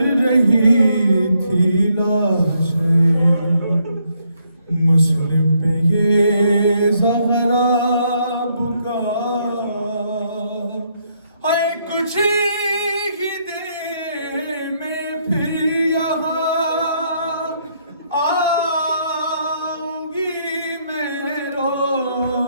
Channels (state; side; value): inverted; both; correlation -0.73